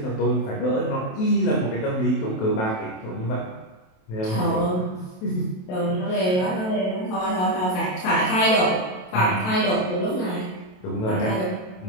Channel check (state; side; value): late; right; 27 ms